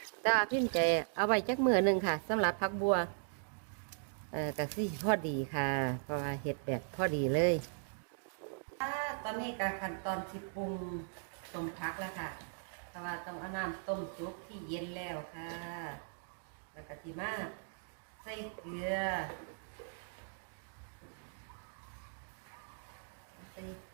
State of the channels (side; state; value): left; silent; digital silence